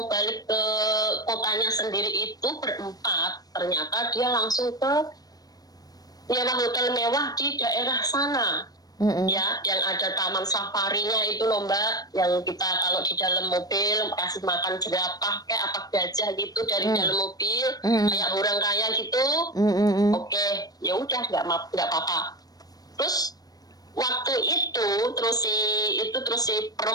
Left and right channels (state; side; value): late; right; 0.18 ms